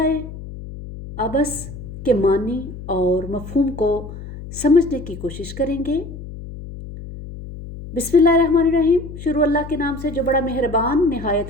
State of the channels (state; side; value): noise; left; hum, 12 dB below the sound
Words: عبس کے معنی اور مفہوم کو سمجھنے کی کوشش کریں گے۔ بسم اللہ الرحمن الرحیم، شروع اللہ کے نام سے جو بڑا مہربان نہایت